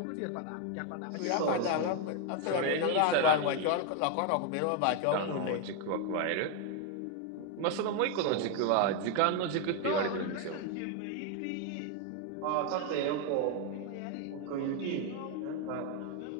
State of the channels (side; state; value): both; different; correlation 0.01